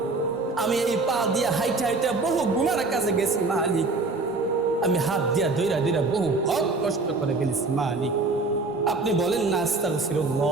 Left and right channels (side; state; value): left; quieter; 3.5 dB